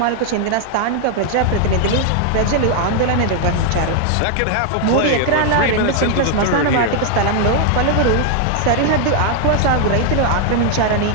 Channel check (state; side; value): different; both; correlation 0.00